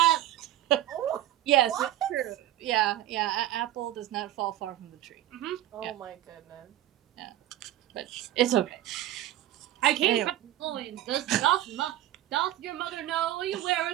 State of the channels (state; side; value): quieter; left; 13.6 dB